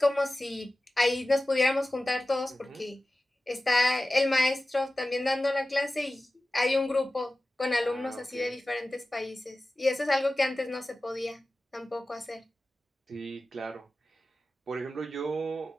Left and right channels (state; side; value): normal; both; correlation 0.95